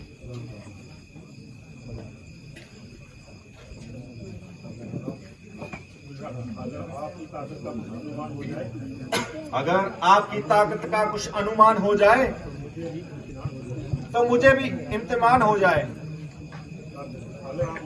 अगर आपकी ताकत का कुछ अनुमान हो जाए तो मुझे भी इम्तिहान हो जाए।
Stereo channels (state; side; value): identical; both; correlation 1.00